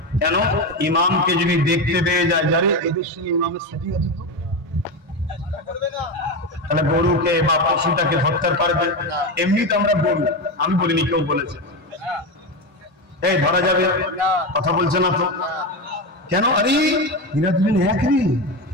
কেন? ইমামকে যদি দেখতে পেয়ে যায় যারে এদের সঙ্গে ইমামের সেটিং আছে তো, তাহলে গরুকে বা পশুটাকে হত্যা করবে। এমনি তো আমরা গরু, আমি বলিনি, কেউ বলেছে এই ধরা যাবে, কথা বলছে না তো কেন? আরে এরা দুজন একই।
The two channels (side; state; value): both; normal; correlation 0.17